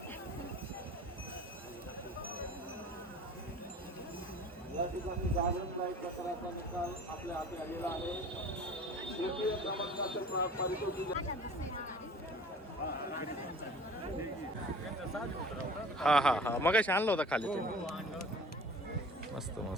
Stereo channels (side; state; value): both; normal; correlation 0.44